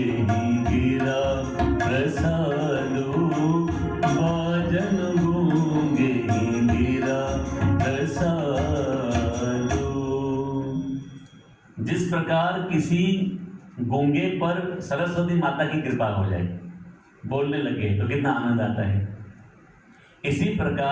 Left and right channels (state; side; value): identical; both; correlation 1.00